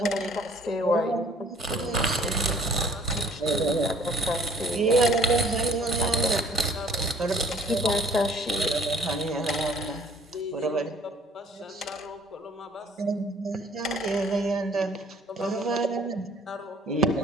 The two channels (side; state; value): both; normal; correlation 0.57